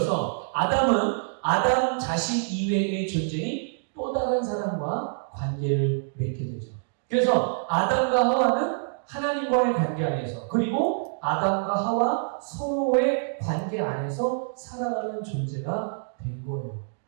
아담은 아담 자신 이외의 존재인 또 다른 사람과 관계를 맺게 되죠. 그래서 아담과 하와는 하나님과의 관계 안에서 그리고 아담과 하와 서로의 관계 안에서 살아가는 존재가 된 거예요.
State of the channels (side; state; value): left; silent; digital silence